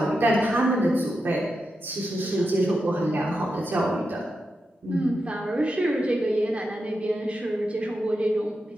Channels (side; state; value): both; normal; correlation 0.88